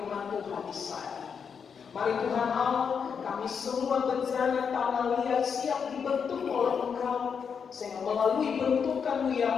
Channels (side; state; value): right; quieter; 6.6 dB